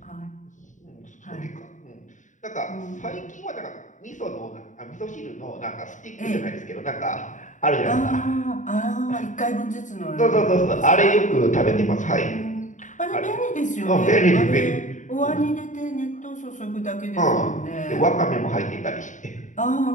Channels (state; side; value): late; right; 0.36 ms